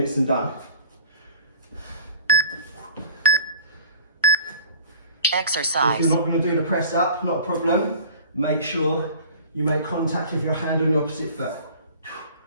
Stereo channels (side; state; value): both; inverted; correlation -0.44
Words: and done. Exercise. If you're not going to do the press up, not a problem. Make sure you make contact with your hand on the opposite foot.